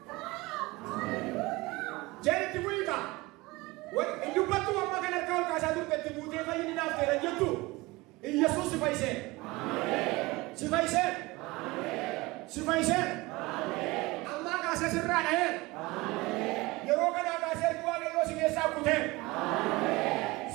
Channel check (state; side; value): quieter; left; 22.0 dB